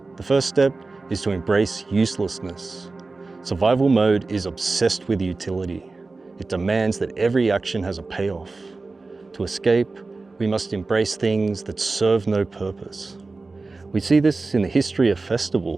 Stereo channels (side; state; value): left; quieter; 3.7 dB